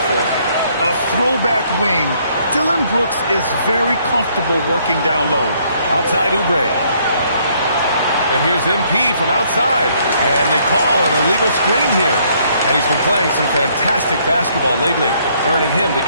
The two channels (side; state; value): both; inverted; correlation -0.67